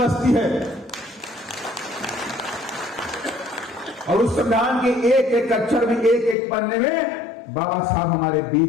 है। और उस संविधान के एक एक अक्षर में, एक एक पन्ने में बाबा साहब हमारे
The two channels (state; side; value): drops out; right; at 6.4 s